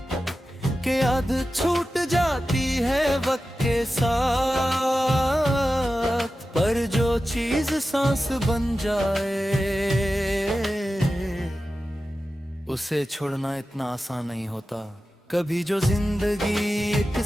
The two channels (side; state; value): both; normal; correlation 0.93